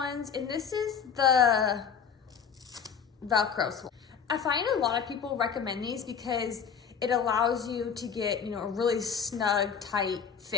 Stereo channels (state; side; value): quieter; right; 7.0 dB